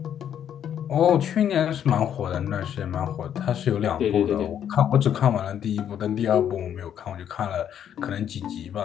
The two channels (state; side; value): quieter; right; 9.5 dB